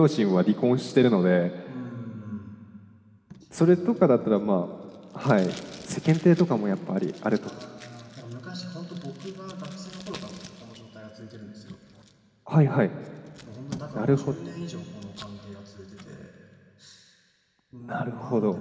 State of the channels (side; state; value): both; identical; correlation 1.00